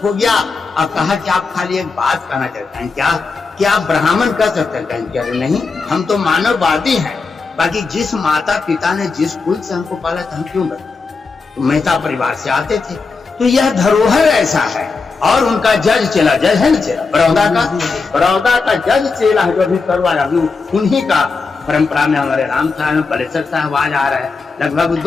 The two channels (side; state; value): right; quieter; 4.4 dB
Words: हो गया और कहा कि आप खाली एक बात कहना चाहते हैं क्या आप ब्राह्मण कह सकते हैं? कहें क्या नहीं, हम तो मानववादी हैं। बाकी जिस माता पिता ने जिस कुल से हमको पाला था, हम क्यों बने? तो मेहता परिवार से आते थे। तो यह धरोहर ऐसा है। और उनका जज चेला, जज है ना चेला, बड़ौदा का जज चेला जो अभी करवाया, अभी उन्हीं का परंपरा में हमारे राम साहब पलेसर साहब आज आ रहा है, लगभग